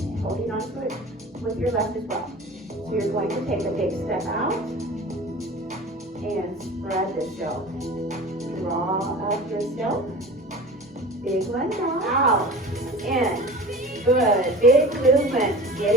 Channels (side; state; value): both; normal; correlation 0.38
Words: holding on to it with your left as well. So you're going to take a big step out and spread the silk. Draw up your silk. Big one now. Out. In. Good. Big movement.